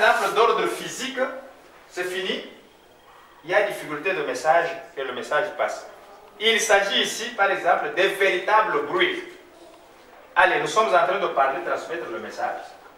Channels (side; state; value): both; identical; correlation 1.00